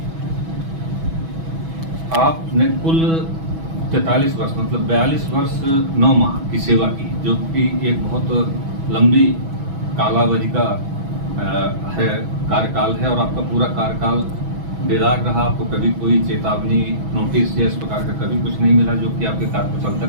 आपने कुल 43 वर्ष मतलब 42 वर्ष 9 माह की सेवा की, जो कि एक बहुत लंबी कालावधि का है कार्यकाल है और आपका पूरा कार्यकाल बेदाग रहा। आपको कभी कोई चेतावनी नोटिस या इस प्रकार का कभी कुछ नहीं मिला, जो कि आपके कार्यकुशलता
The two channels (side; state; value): left; late; 6.1 ms